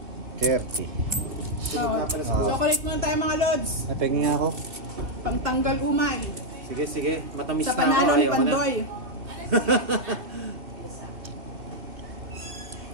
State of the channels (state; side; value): late; left; 2.5 ms